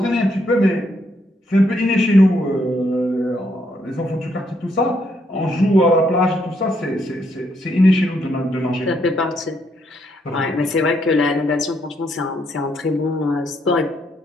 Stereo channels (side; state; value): both; normal; correlation 0.74